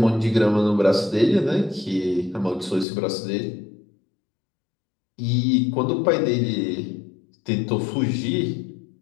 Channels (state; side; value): drops out; right; at 2.9 s